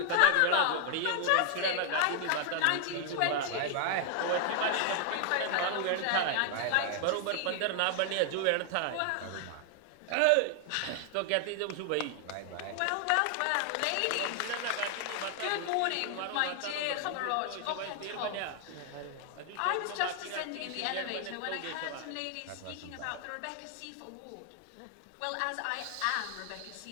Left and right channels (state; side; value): different; both; correlation 0.00